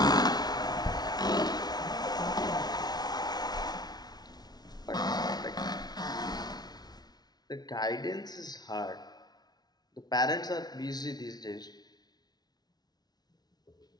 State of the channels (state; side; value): late; right; 0.19 ms